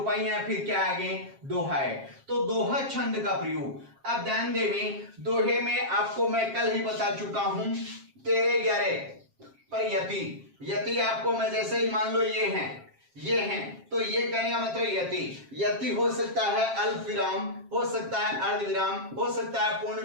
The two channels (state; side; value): late; left; 7.4 ms